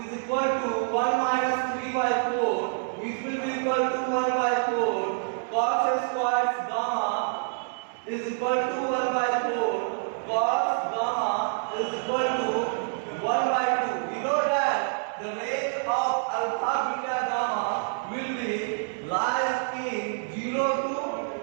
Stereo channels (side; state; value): left; silent; 57 dB below the other